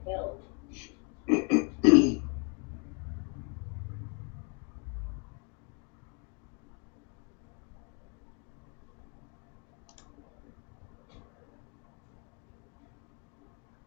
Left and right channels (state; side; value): quieter; right; 34.5 dB